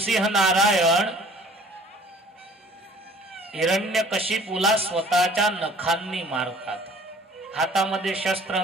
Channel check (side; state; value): both; normal; correlation 0.52